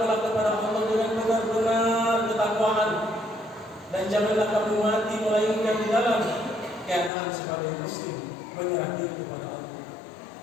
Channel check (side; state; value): right; drops out; at 7.1 s